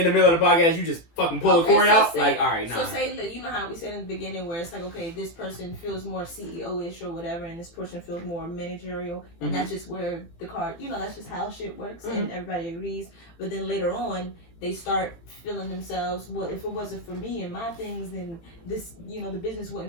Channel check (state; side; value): late; right; 18 ms